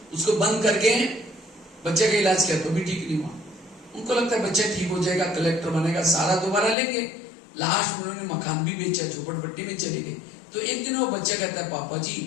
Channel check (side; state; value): right; drops out; at 6.8 s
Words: उसको बंद करके बच्चे का इलाज किया तो भी ठीक नहीं हुआ। उनको लगता है बच्चा ठीक हो जाएगा, कलेक्टर बनेगा, सारा दोबारा लेंगे। लास्ट में उन्होंने मकान भी बेचा, झोपड़पट्टी में चले गए। तो एक दिन वो बच्चा कहता है, पापा जी